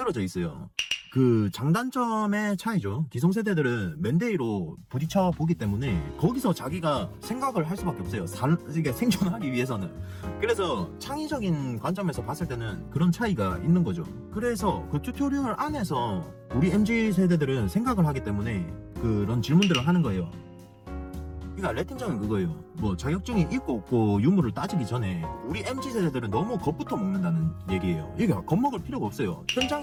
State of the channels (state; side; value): identical; both; correlation 1.00